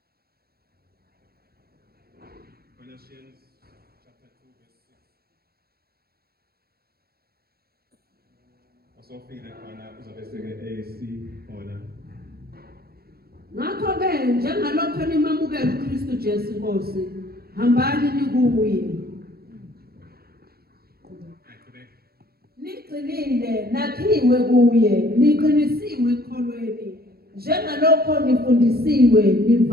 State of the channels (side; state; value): left; late; 0.45 ms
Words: Colossians chapter 2 verse 6. Osofile khona uzobe seke AC khona. Ngakho-ke njengalokho nimamukela uKristu Jesu Nkosi, hambani nikuye. Niqinile, nakhiwe kuye, niqinisiwe ekholweni, njengalokho nifundisiwe,